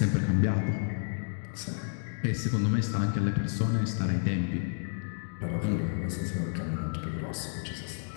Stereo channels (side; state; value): right; silent; digital silence